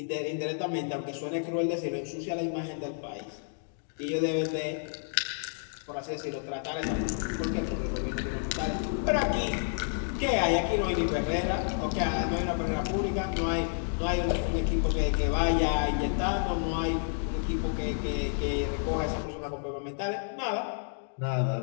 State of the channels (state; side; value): silent; right; digital silence